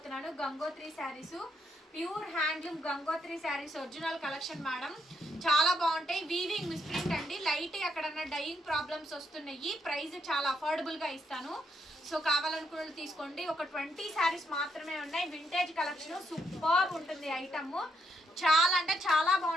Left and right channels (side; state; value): both; normal; correlation 0.77